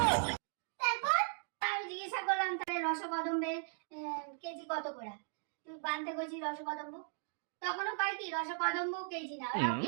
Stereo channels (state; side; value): silent; left; 53 dB below the other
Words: তারপর আমি জিজ্ঞাসা করলাম তাহলে রসকদম্বের কেজি কত করে? তুই বানতে কইছিস রসকদম্ব, তখনও কয় কি রসকদম্ব কেজি না, ওরা